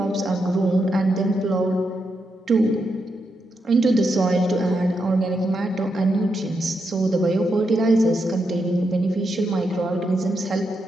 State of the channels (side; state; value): both; normal; correlation 0.83